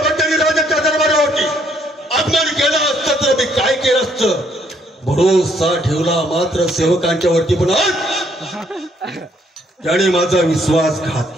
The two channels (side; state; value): both; normal; correlation 0.68